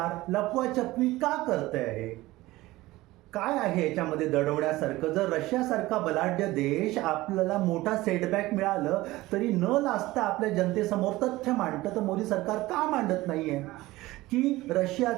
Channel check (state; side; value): quieter; left; 18.5 dB